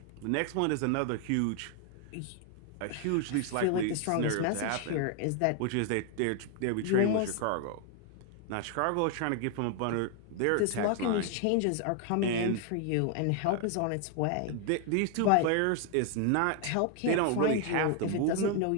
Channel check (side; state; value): both; different; correlation 0.00